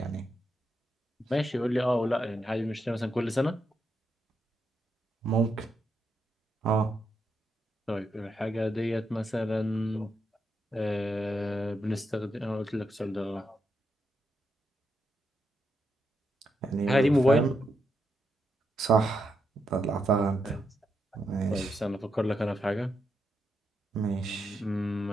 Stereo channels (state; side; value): normal; both; correlation 0.82